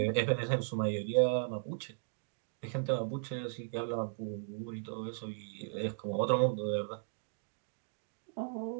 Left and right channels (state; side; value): silent; left; digital silence